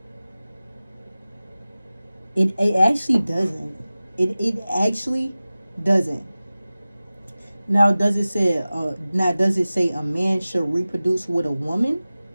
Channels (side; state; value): both; inverted; correlation -0.97